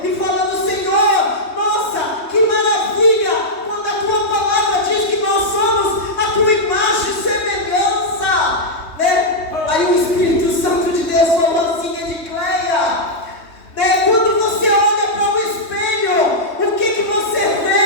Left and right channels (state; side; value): late; right; 3.2 ms